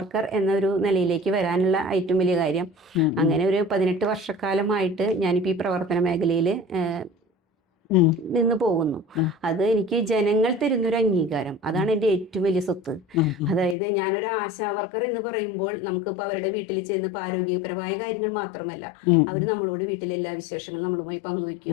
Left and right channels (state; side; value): drops out; right; at 13.8 s